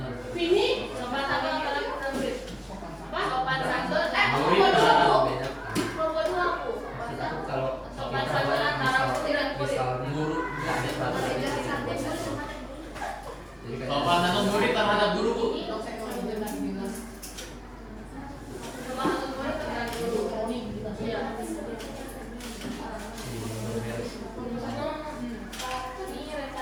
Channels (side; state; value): both; identical; correlation 1.00